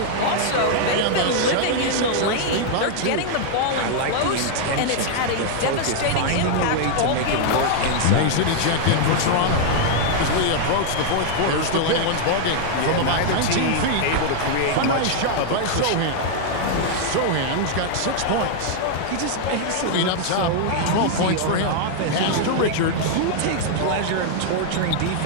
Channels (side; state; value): both; different; correlation -0.01